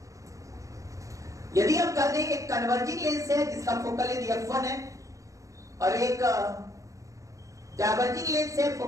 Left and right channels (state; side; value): late; left; 0.16 ms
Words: यदि हम कहते हैं एक कन्वर्जिंग लेंस है जिसका फोकल लेंथ F1 है और एक डाइवर्जिंग लेंस है